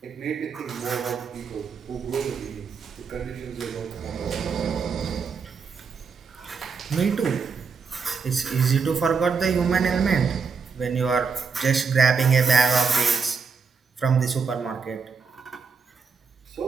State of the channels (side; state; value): left; quieter; 5.4 dB